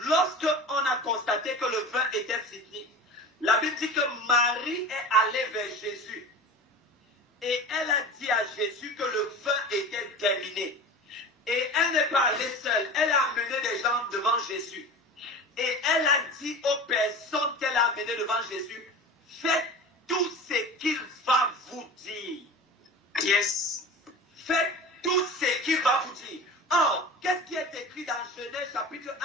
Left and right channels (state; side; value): normal; both; correlation 0.34